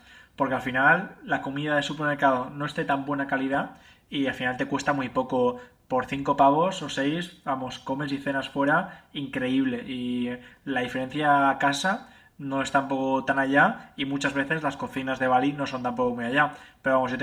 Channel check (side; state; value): both; identical; correlation 1.00